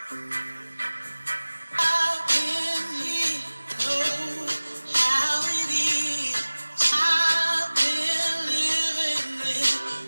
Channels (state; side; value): inverted; both; correlation -1.00